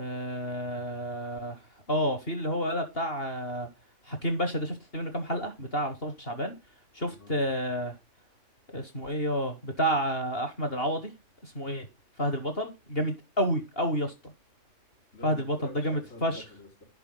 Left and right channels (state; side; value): late; right; 2.8 ms